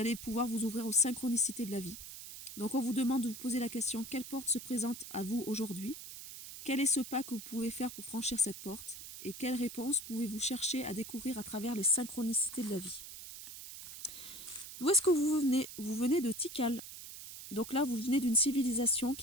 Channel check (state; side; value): noise; right; hiss, 12 dB below the sound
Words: pouvoir vous ouvrir aux synchronicités de la vie. Donc, on vous demande de vous poser la question, quelle porte se présente à vous aujourd'hui? Quel est ce pas que vous pouvez faire pour franchir cette porte? Et quelle réponse pouvez-vous chercher à découvrir à travers les synchronicités de la vie? D'où est-ce que vous venez? Vous venez de Tikal. Donc là, vous venez d'une civilisation